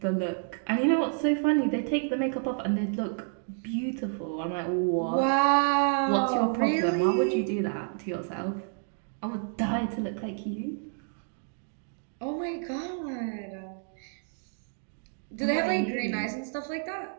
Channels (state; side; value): silent; left; 56 dB below the other